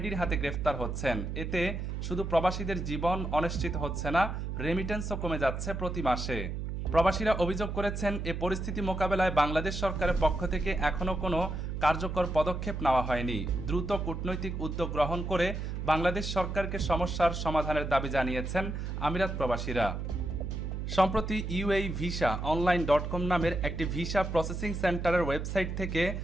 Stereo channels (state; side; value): noise; right; hum, 4 dB below the sound